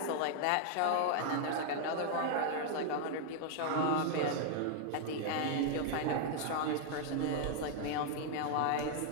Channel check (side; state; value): both; different; correlation 0.00